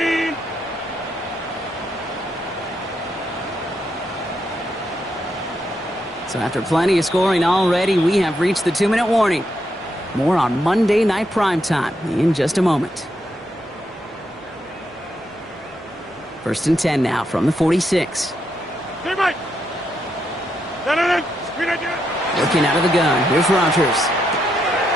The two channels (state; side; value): normal; both; correlation 0.80